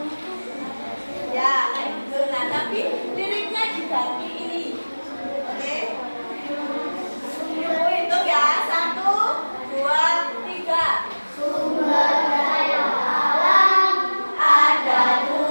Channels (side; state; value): both; inverted; correlation -1.00